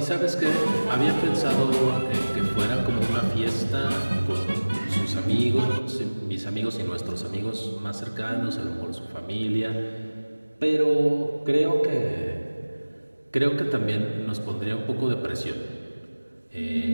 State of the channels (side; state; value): both; inverted; correlation -1.00